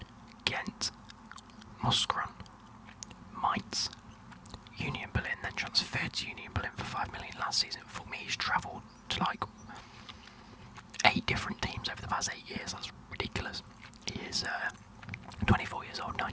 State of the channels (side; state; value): both; identical; correlation 1.00